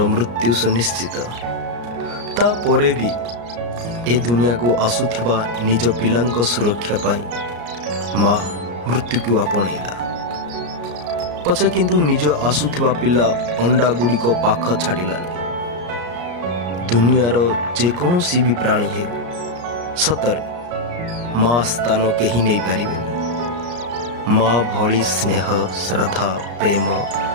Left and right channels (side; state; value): left; late; 34 ms